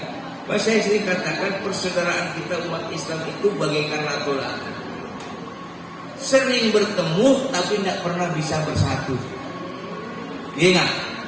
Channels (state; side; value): identical; both; correlation 1.00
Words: Saya sering katakan persaudaraan kita umat Islam itu bagaikan latu-latu. Sering bertemu tapi tidak pernah bisa bersatu. Iya nggak?